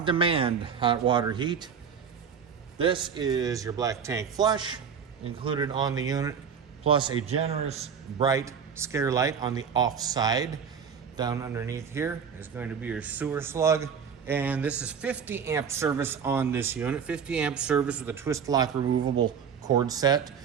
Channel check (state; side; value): quieter; left; 6.9 dB